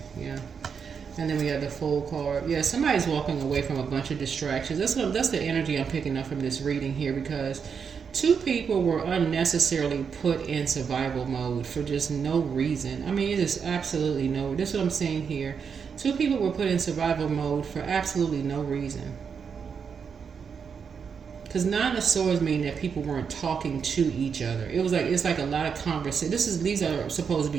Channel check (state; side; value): quieter; left; 6.4 dB